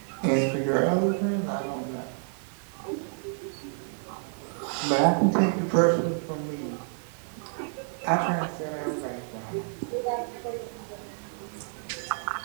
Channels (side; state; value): left; silent; 58 dB below the other